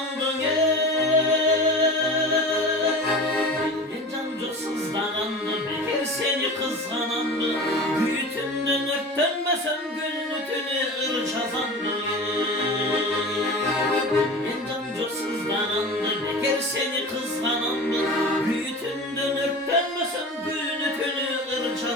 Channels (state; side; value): normal; both; correlation 0.34